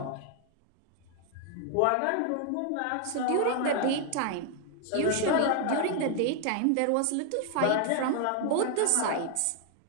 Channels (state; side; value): different; both; correlation 0.00